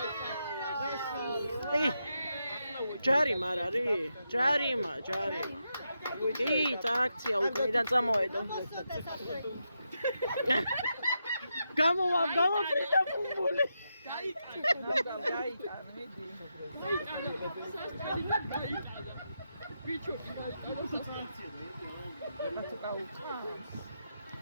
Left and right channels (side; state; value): both; inverted; correlation -0.85